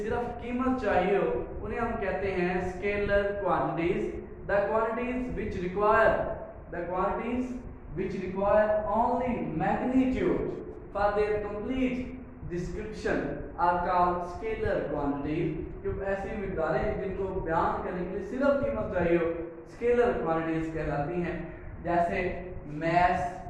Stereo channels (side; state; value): both; identical; correlation 1.00